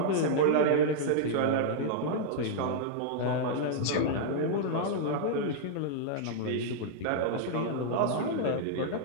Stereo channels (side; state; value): both; different; correlation -0.01